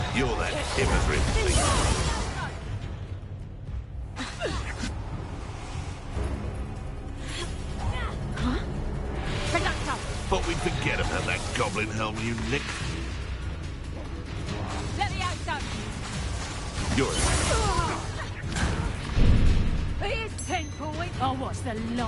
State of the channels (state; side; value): identical; both; correlation 1.00